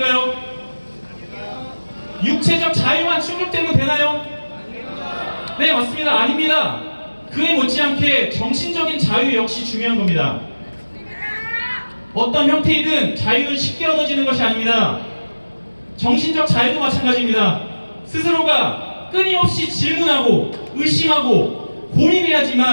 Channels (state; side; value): inverted; both; correlation -1.00